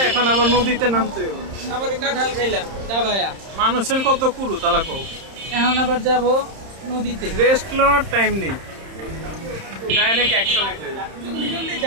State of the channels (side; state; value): left; late; 31 ms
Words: এখন আবার নদীতে নামতে হবে। আবার কাঁঠাল খাইলাম দাবায়া। মানুষের কত কুরু তালা কও। এখন আবার যাব নদীতে। রেস্ট নেওয়ার টাইম নেই, ডাইরেক্ট অ্যাকশন। জলদি জলদি